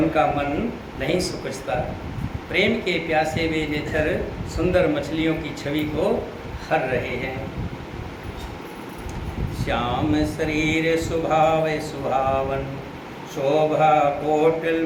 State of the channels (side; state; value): both; identical; correlation 1.00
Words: मन नहीं सुखचता। प्रेम के प्यासे वे नेत्र सुंदर मछलियों की छवि को हर रहे हैं। श्याम शरीर सुभाव सुहावन, शोभा कोटिल